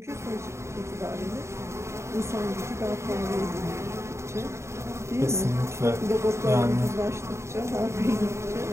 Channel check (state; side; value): late; left; 0.14 ms